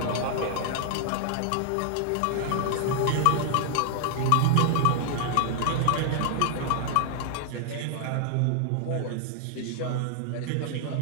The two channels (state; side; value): different; both; correlation -0.01